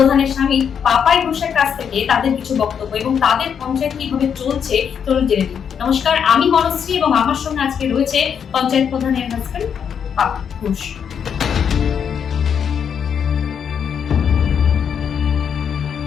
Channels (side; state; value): right; quieter; 7.6 dB